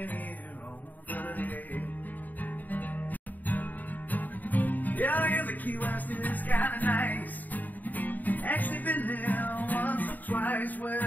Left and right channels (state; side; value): late; right; 0.084 ms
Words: here on 38. Yeah, I guess the Key West is kinda nice. Actually been there once or twice.